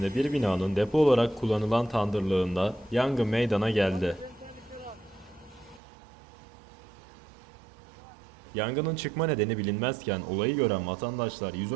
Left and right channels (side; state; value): left; drops out; at 5.8 s